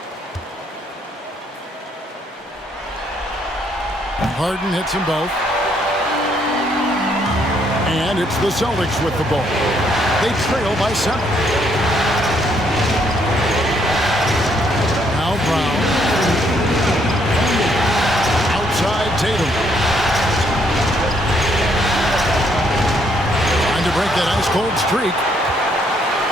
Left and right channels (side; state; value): both; normal; correlation 0.70